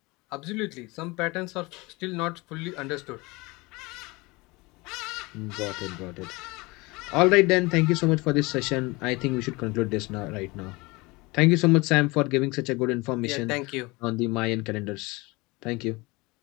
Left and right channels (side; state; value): right; quieter; 24.1 dB